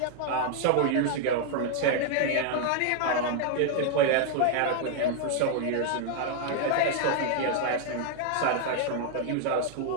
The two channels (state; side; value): different; both; correlation 0.00